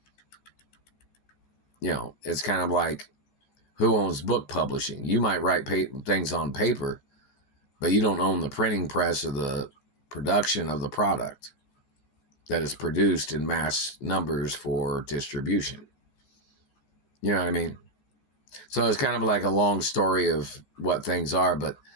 You know, it's kind of like, who owns book publishing? You might write things on paper, but you don't own the printing press or the production of the product that is produced in mass numbers for distribution. You know what I mean? So it's kind of like a long story of what things are, but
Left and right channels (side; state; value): right; late; 13 ms